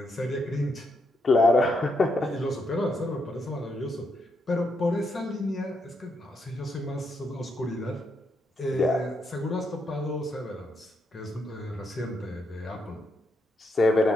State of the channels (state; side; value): normal; both; correlation 0.80